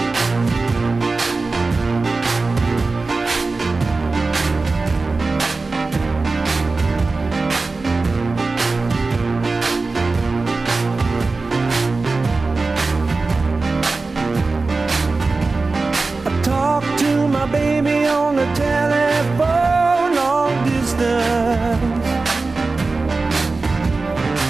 Baby on the telephone, long distance.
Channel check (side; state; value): left; quieter; 3.7 dB